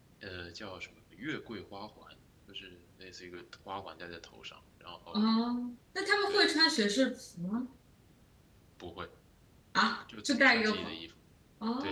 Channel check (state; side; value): identical; both; correlation 1.00